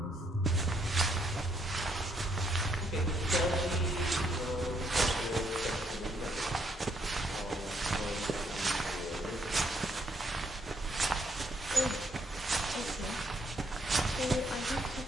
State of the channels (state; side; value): normal; both; correlation 0.72